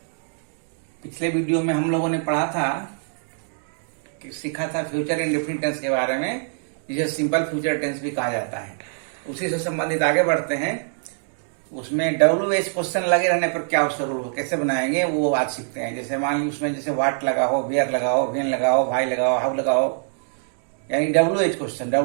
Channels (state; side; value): silent; left; digital silence